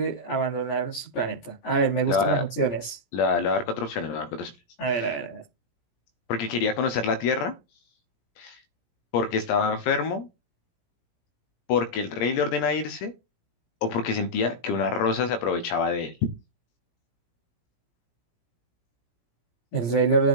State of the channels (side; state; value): right; late; 17 ms